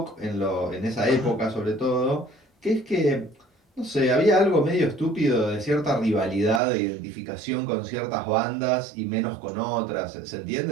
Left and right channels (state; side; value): drops out; left; at 6.6 s